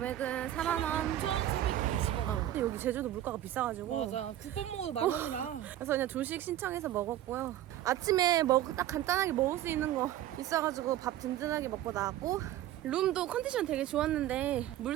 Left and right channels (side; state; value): left; quieter; 12.9 dB